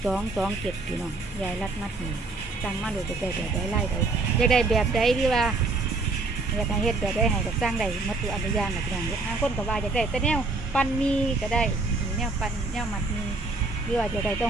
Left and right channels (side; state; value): left; quieter; 3.5 dB